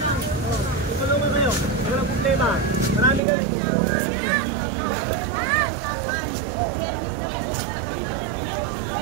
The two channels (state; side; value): drops out; left; at 3.2 s